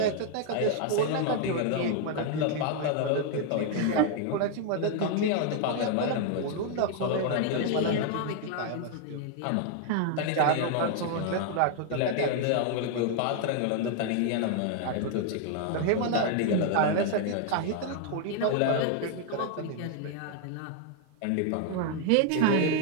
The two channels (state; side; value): different; both; correlation 0.00